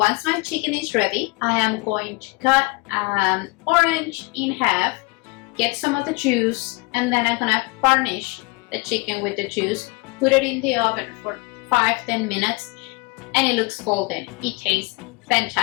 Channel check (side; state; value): right; quieter; 26.3 dB